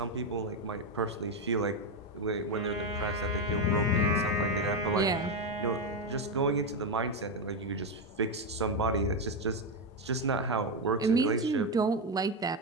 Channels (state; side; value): normal; both; correlation 0.08